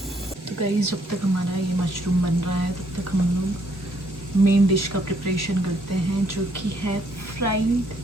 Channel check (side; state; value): both; normal; correlation 0.69